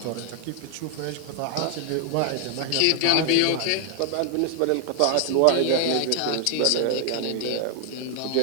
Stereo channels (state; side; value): different; both; correlation 0.00